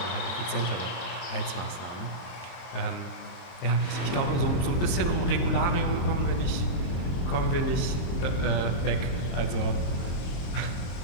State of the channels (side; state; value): right; late; 23 ms